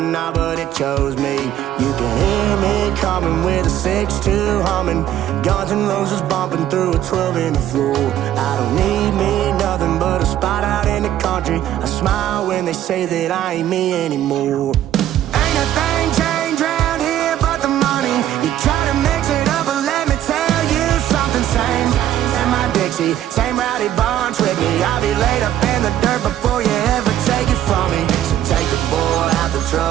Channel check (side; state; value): left; quieter; 11.9 dB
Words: now, but it chose me. You can hear me coming with a 6-2 humming, Guns N' Roses bumping through a 12 in the floor. I don't need me nothing but a spot out in the country. I smile when they say that I ain't me anymore. Ain't a thing changed around here but the money. You try to mix it up, but let me tell you something. Same in my Dixie, same rowdy bunch with me. I'll be laid up in the dirt before you ever take it from me. So take the boy out the